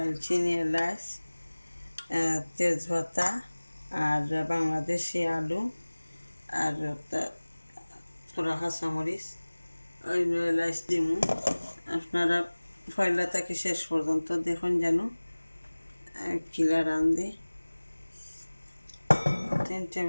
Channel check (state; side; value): inverted; both; correlation -1.00